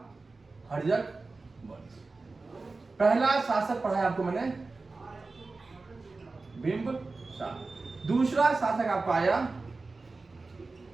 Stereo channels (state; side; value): quieter; left; 3.7 dB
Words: हर्यक वंश। पहला शासक पढ़ा है आपको मैंने बिंबिसार। दूसरा शासक आपका आया